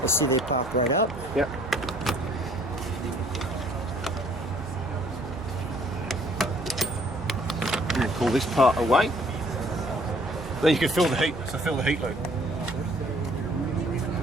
Let's see, they pop right up. Yeah. And then pull this part away. Then you can feel the heat. So feel the heat loop.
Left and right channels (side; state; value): both; normal; correlation 0.59